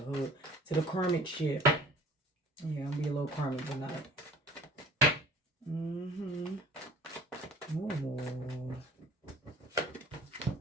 To the karmic shit. Yeah, I'll be a little karmic tonight. Oh.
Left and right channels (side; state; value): both; normal; correlation 0.49